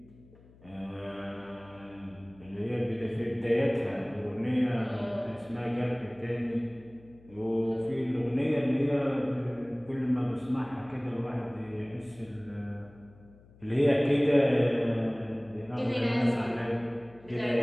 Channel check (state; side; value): noise; left; hum, 25 dB below the sound